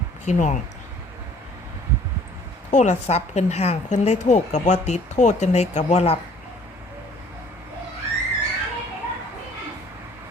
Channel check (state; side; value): normal; both; correlation 0.55